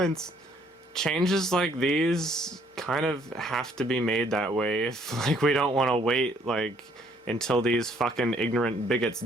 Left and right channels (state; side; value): normal; both; correlation 0.64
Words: Changes like these kind of have to be made that way if, like, we don't want to wait, like, until these fucking ignorant bigots